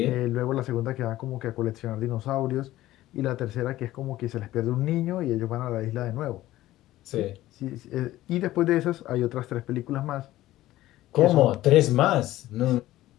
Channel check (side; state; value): right; quieter; 15.5 dB